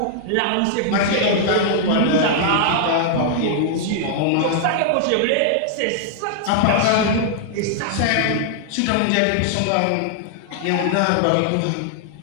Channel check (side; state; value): both; different; correlation -0.01